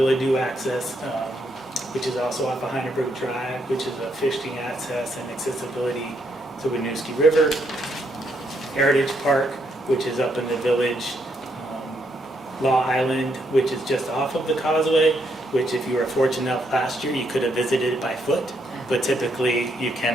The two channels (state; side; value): normal; both; correlation 0.76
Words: access, which is also off of Heineberg Drive, which is a fishing access and accessibility to Winooski River. Heritage Park, which is up in the village. Law Island, which is just off of the Causeway, which if you were fortunate enough last year, you could have visited it by foot, but typically you